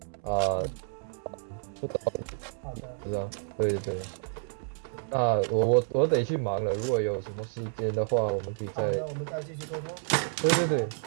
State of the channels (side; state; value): left; silent; 58 dB below the other